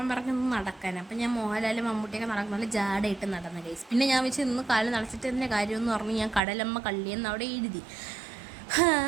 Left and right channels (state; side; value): drops out; left; at 6.4 s